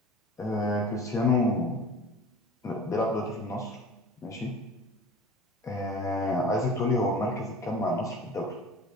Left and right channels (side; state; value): both; normal; correlation 0.40